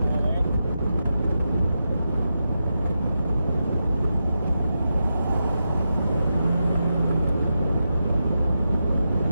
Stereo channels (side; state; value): both; inverted; correlation -0.88